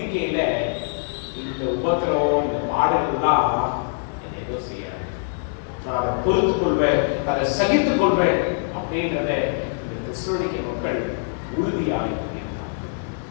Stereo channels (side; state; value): right; silent; digital silence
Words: இந்த உபத்திரவம், இந்த பாடல்கள்லாம் என்னை ஏதோ செய்யாது, நான் அதை பொறுத்துக் கொள்வேன், அதை சகித்துக் கொள்வேன் அப்படின்றத இந்த தெசலோனிக்க மக்கள் உறுதியாக.